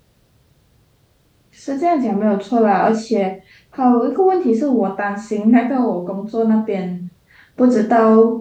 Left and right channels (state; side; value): identical; both; correlation 1.00